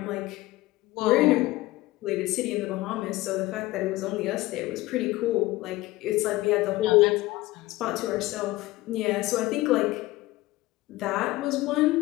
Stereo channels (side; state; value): right; quieter; 18.6 dB